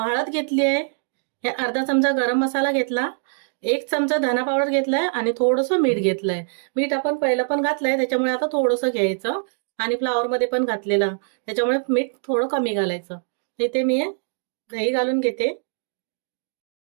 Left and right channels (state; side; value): silent; left; 63 dB below the other